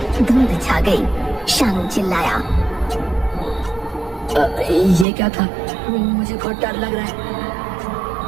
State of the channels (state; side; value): drops out; left; at 5.1 s